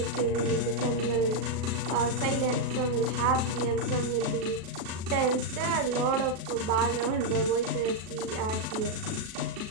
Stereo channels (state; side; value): late; left; 37 ms